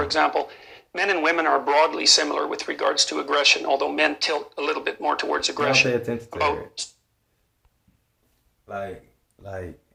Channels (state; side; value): identical; both; correlation 1.00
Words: example, men and women are broadly similar with regards to aggression, although men tilt a little bit more towards aggression. Don't pay attention to her. Like,